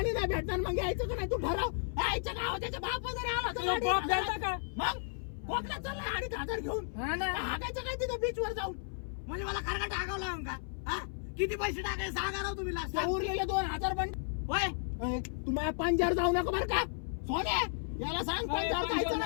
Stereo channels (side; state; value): right; silent; 55 dB below the other